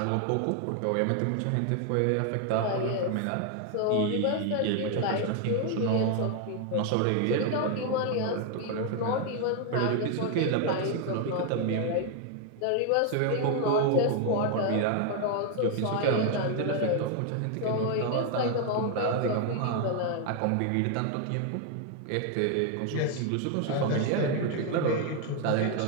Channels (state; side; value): different; both; correlation 0.00